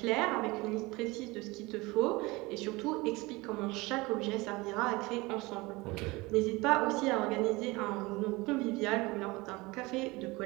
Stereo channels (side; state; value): left; quieter; 23.0 dB